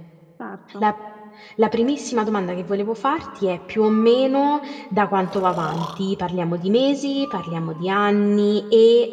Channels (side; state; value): both; identical; correlation 1.00